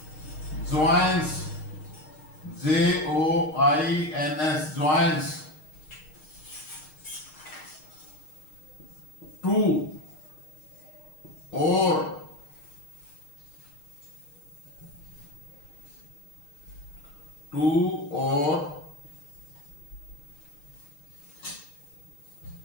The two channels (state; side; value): late; right; 6.5 ms